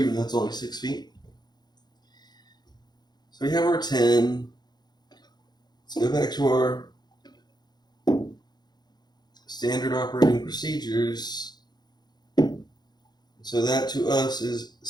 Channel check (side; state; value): right; late; 0.20 ms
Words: though it's only 6 feet. So we have our 10. Let's go back to our standard operating procedures. So that to us is